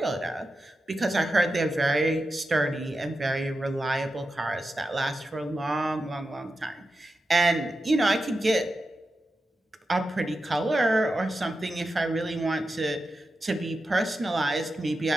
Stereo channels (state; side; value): normal; both; correlation 0.90